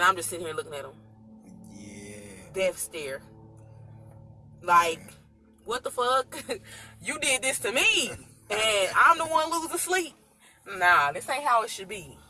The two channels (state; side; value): identical; both; correlation 1.00